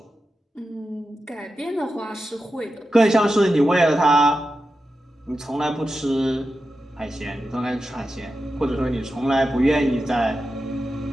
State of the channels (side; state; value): both; normal; correlation 0.91